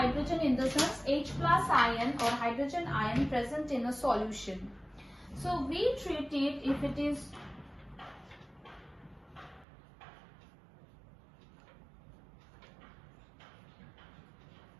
in the sense H plus ion or hydrogen ion present in a solution. So we treat it if it is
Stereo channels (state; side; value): drops out; left; at 9.7 s